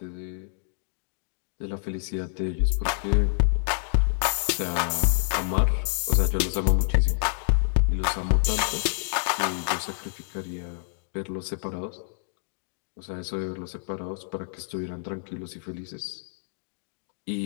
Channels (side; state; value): right; silent; digital silence